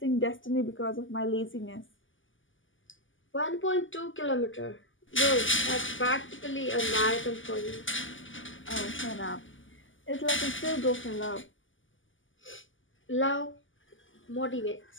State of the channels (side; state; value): right; late; 0.57 ms